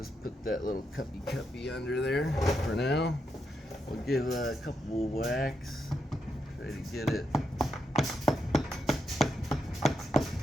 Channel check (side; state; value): both; normal; correlation 0.82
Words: put that little cuppy under there for now. We'll give a couple of whacks. Try to get it.